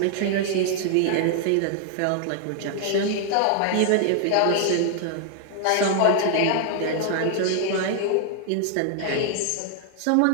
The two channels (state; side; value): different; both; correlation 0.00